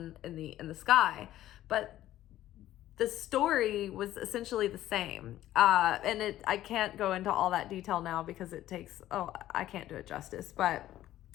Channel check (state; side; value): quieter; right; 13.7 dB